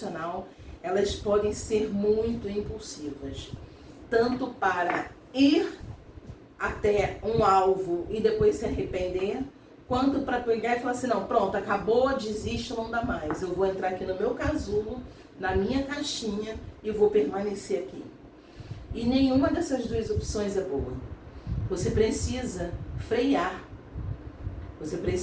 elas podem ser muito impulsivas, tanto para ir até um alvo e depois se arrepender, quanto para pegar e falar assim, não, pronto, acabou, desisto, não dá mais. Eu vou entrar aqui no meu casulo, na minha caixinha e vou permanecer aqui. E nenhuma dessas duas opções é boa. Você precisa frear. Você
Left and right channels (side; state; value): both; identical; correlation 1.00